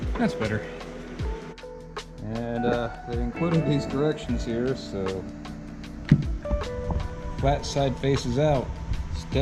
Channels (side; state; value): both; identical; correlation 1.00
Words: That's better. And they included these directions here, so flat side faces out,